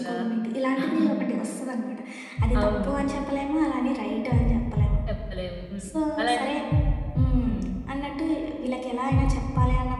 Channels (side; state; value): both; identical; correlation 1.00